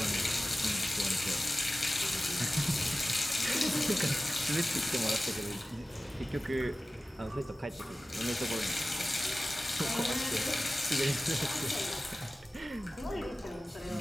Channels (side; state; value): both; normal; correlation 0.96